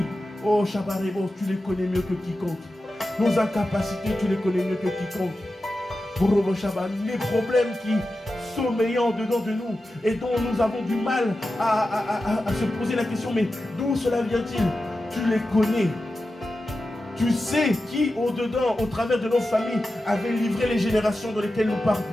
oh Chabarebo, tu les connais mieux que quiconque. Nos incapacités, tu les connais mieux que quiconque. Les problèmes qui sommeillant dedans de nous et dont nous avons du mal à se poser la question, mais d'où cela vient-il? Tu les connais. Tu sais qui au-dedans, au travers de nos familles, avait livré les générations dans lesquelles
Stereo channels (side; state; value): both; normal; correlation 0.92